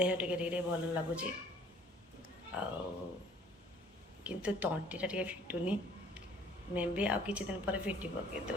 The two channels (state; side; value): normal; both; correlation 0.55